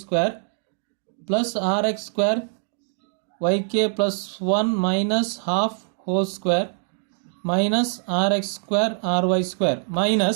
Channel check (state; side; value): silent; left; 56 dB below the other